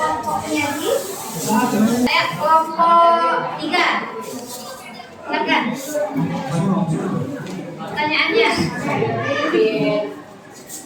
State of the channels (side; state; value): both; identical; correlation 1.00